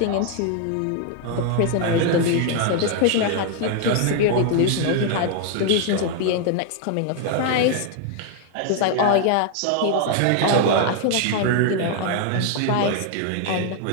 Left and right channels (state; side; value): different; both; correlation 0.00